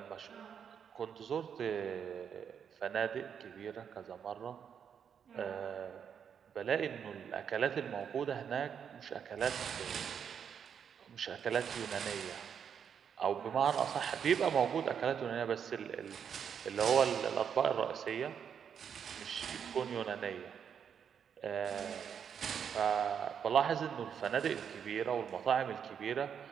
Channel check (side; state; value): left; quieter; 7.7 dB